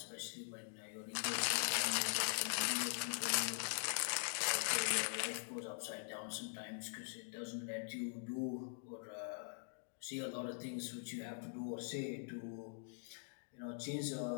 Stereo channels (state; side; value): silent; right; digital silence